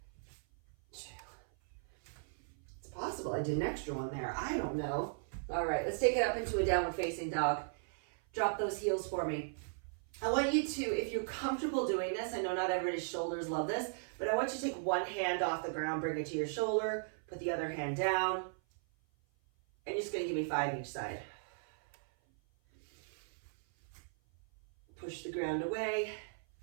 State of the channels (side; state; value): left; silent; 53 dB below the other